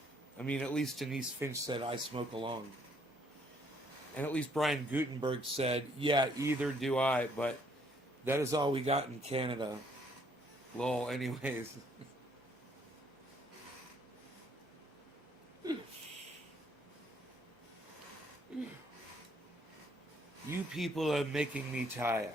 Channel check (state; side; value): normal; both; correlation 0.67